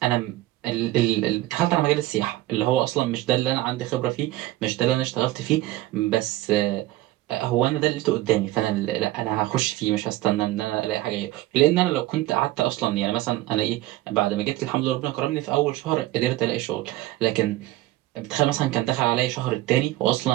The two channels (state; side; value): quieter; left; 16.8 dB